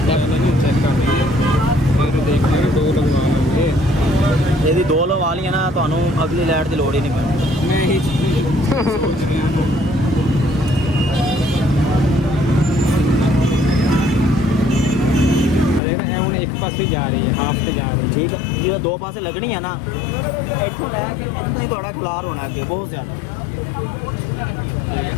यदि 2 लगा ली ना तो अगली लाइट की लोड़ ही नहीं पैनी। मैं ही सोच रहा हूँ एक पास ही जा रही है, हाथ से जा रही है। ठीक है जी, 2 पासे लगनी है ना, नहीं थोड़ा खिलार होना अगे बहुत ज़्यादा।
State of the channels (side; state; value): right; drops out; at 15.8 s